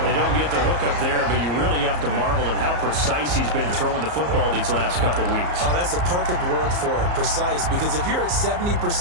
They don't get the hook up there, but you really have to marvel at how precise he's been throwing the football these last couple weeks. Oh, that's the perfect word for it, precise, because if you're at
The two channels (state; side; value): late; left; 34 ms